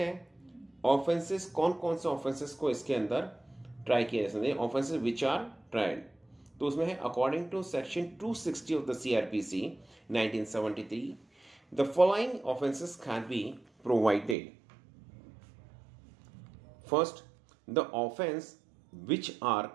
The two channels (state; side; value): drops out; left; at 14.4 s